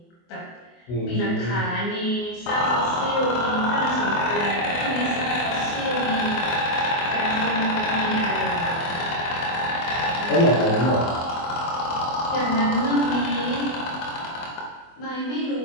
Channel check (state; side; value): late; right; 24 ms